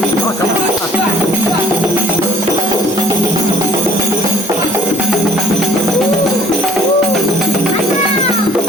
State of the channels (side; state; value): both; normal; correlation 0.56